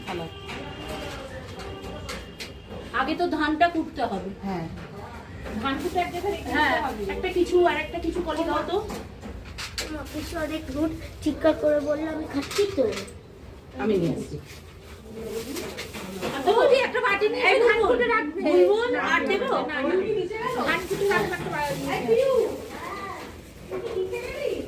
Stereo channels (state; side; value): identical; both; correlation 1.00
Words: থালা। আগে তো ধানটা কুটতে হবে। হ্যাঁ ধান কুটে এক জায়গায় রেখে দিতে হবে। একটা কিছু আর একটা কিছু কলি দাও তো। কিছু অনেক রুট চিৎকার করে বললে আমি খাচ্ছি তো। আমি নিয়ে আসছি। বৌদি একটা বাটি নিয়ে ধান কুটে রাখবে। বুলবুল আর দেবো? ধান কুটে রাখবে একটা বাটি। হ্যাঁ